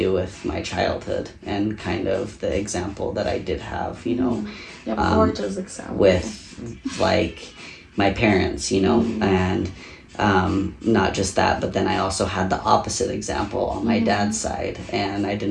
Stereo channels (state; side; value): identical; both; correlation 1.00